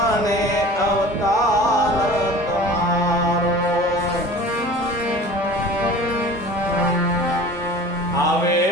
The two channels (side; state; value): both; normal; correlation 0.41